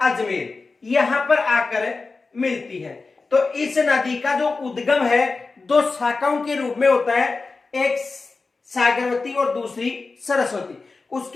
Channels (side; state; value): right; quieter; 4.0 dB